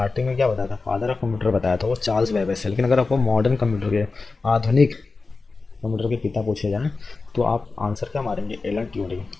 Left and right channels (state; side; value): quieter; right; 4.0 dB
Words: में क्या बताया था, फादर ऑफ कंप्यूटर बताया था वो चार्ल्स बेबेज है। लेकिन अगर आपको मॉडर्न कंप्यूटर के, आधुनिक कंप्यूटर के पिता पूछे जाएँ तो आप आंसर क्या मारेंगे, एलन ट्यूरिंग,